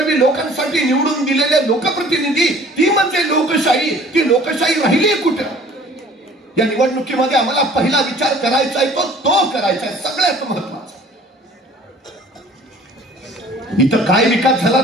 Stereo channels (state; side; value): normal; both; correlation 0.50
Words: लोकांसाठी निवडून दिलेले लोकप्रतिनिधी, ती म्हणजे लोकशाही. ती लोकशाही राहिली कुठं? या निवडणुकीमध्ये आम्हाला पहिला विचार करायचा आहे तो करायचा आहे, सगळ्यात महत्वाचा. इथं काय विकास झाला